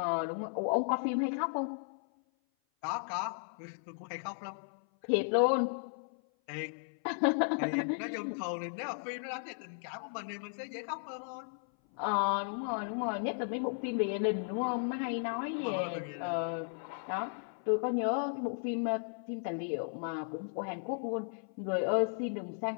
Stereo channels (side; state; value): right; silent; 54 dB below the other